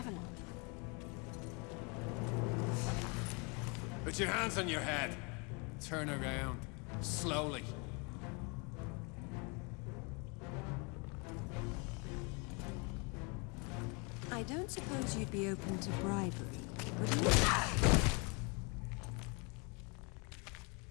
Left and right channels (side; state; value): right; quieter; 31.9 dB